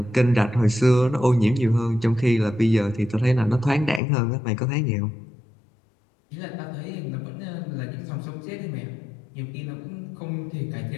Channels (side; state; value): right; drops out; at 4.0 s